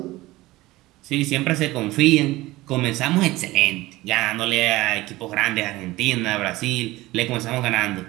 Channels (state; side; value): quieter; left; 18.8 dB